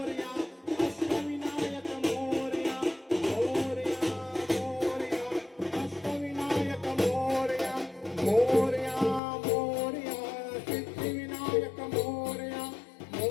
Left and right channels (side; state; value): right; drops out; at 9.2 s